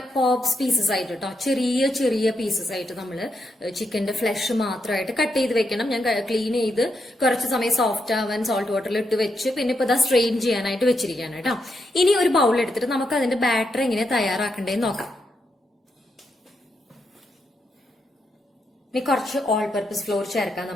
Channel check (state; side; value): normal; both; correlation 0.82